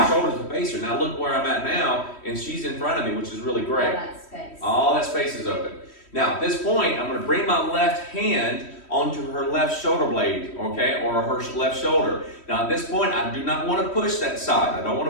shoulders to face her. Now look where I'm at now, and she's in front of me, which is really great. All that space. All that space is open. Now at this point, I'm going to bring my left hand onto her left shoulder blade, or her left shoulder. Now at this point, I do not want to push that side. I don't want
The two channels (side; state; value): right; late; 3.1 ms